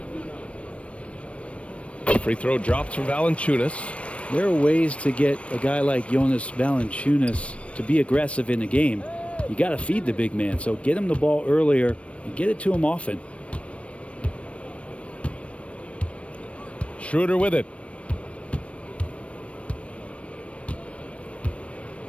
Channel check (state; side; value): late; right; 0.062 ms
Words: Free throw drops for Valanciunas. There are ways to get a guy like Jonas Valanciunas to be aggressive in the game. You got to feed the big man, so get him the ball earlier and get it to him often. Schroeder with it.